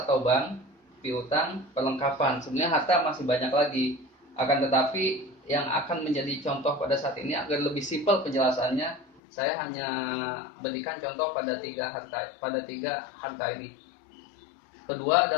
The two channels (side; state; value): right; drops out; at 9.2 s